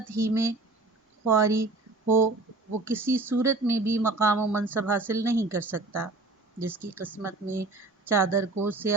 ہی میں خواری ہو وہ کسی صورت میں بھی مقام و منصب حاصل نہیں کر سکتا۔ جس کی قسمت میں چادر کو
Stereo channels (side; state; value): left; quieter; 3.2 dB